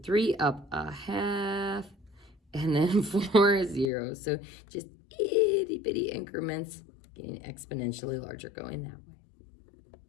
3, up a half, and then 4 is 0. So just itty bitty increments, getting exponentially larger going that way.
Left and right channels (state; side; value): drops out; right; at 3.9 s